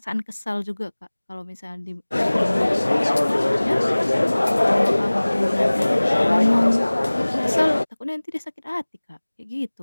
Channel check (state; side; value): inverted; both; correlation -1.00